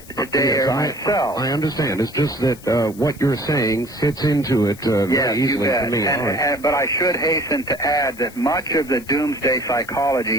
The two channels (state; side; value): noise; left; hiss, 21 dB below the sound